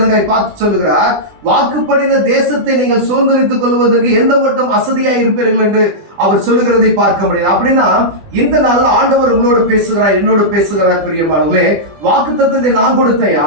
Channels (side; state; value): left; late; 20 ms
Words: பார்த்து சொல்லுகிறார், வாக்குப்படின தேசத்தை நீங்கள் சுதந்திரித்துக் கொள்வதற்கு எந்த மட்டும் அசதியா இருப்பீர்கள் என்று அவர் சொல்லுகிறதை பார்க்க முடியாது. அப்படின்னா இந்த நாள் ஆண்டவர் உங்களோடு பேசுகிறார், என்னோடு பேசுகிறார். பிரியமானவர்களே, வாக்கு தத்துவத்தை நான் கொடுத்தையா,